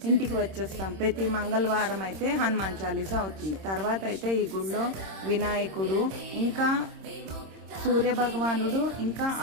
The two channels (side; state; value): left; late; 26 ms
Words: ఇంటికి వచ్చేస్తాం. ప్రతి మంగళవారం అయితే హనుమాన్ చాలీసా అవుతుంది. తర్వాత అయితే ఈ గుళ్ళో వినాయకుడు, ఇంకా సూర్య భగవానుడు, ఇంకా